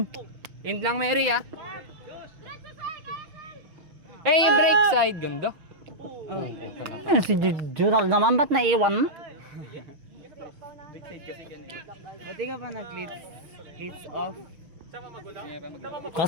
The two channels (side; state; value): left; late; 5.9 ms